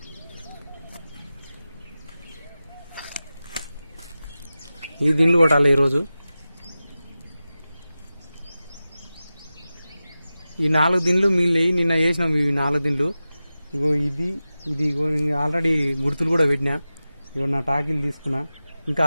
ఈ దిండ్లు కొట్టాలి ఈరోజు. ఈ 4 దిండ్లు మిగిలినవి నిన్న వేసినాం. ఇవి 4 దిండ్లు. ఇగో ఇది ఇగో ఆల్రెడీ గుర్తులు కూడా పెట్టినా. ఇగో నా టాకీలు తీసుకున్నా. ఇంకా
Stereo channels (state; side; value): inverted; both; correlation -0.95